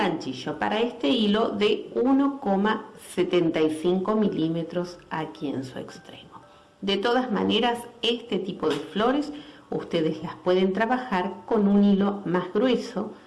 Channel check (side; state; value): both; identical; correlation 1.00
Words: para este hilo de 1,75 milímetros aquí en su extremo. De todas maneras, este tipo de flores ustedes las pueden trabajar con un hilo más grueso,